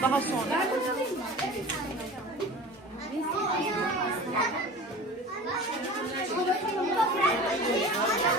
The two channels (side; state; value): both; normal; correlation 0.37